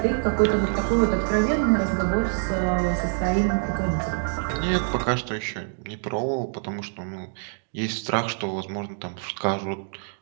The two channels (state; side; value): silent; left; digital silence